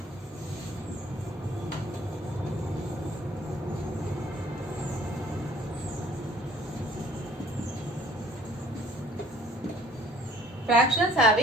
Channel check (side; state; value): both; normal; correlation 0.56